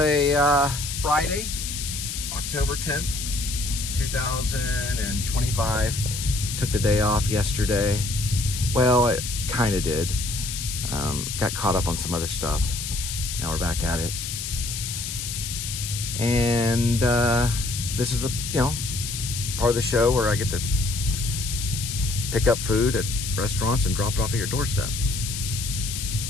Friday, October 10th, 2025. Took the day off yesterday. Well, I kind of did. Got caught up on some other stuff. Now we're back at it. And this is the, part of the show where I get to pick up food at restaurants and drop it off at your doorstep.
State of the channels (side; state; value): left; noise; hiss, 5 dB below the sound